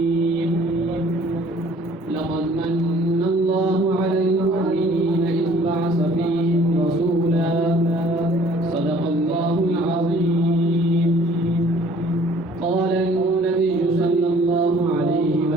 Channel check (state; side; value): normal; both; correlation 0.55